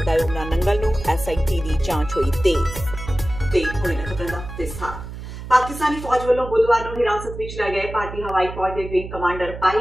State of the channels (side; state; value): right; noise; hum, 10 dB below the sound